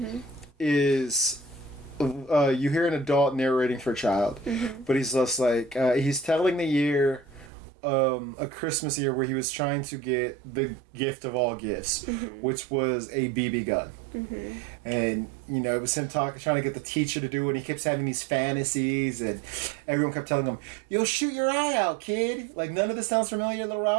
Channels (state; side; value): drops out; left; at 7.5 s